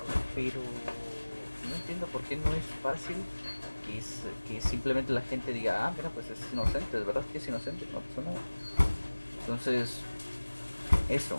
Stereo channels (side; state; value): both; inverted; correlation -1.00